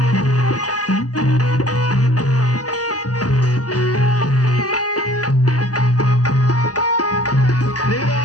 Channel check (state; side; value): late; right; 0.67 ms